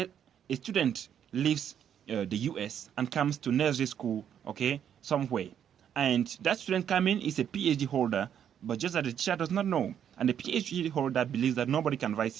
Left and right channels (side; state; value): left; quieter; 9.1 dB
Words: a student leaves the US and comes to nursery school, okay, somewhere. And that student coming is a PhD holder, but just that the teacher does not know. And the PhD holder believes that nobody can